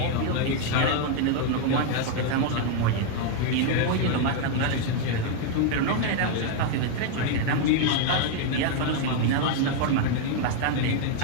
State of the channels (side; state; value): both; different; correlation 0.00